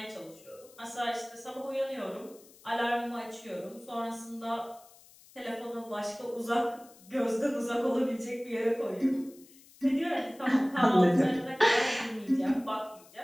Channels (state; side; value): noise; left; hiss, 24 dB below the sound